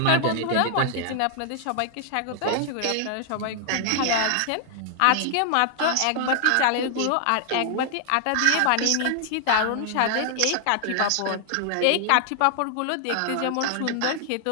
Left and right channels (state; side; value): different; both; correlation 0.00